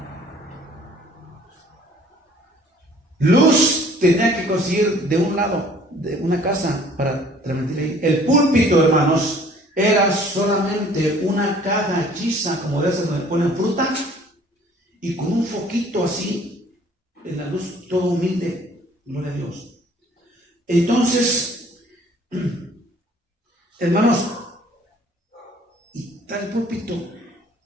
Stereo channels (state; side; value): normal; both; correlation 0.55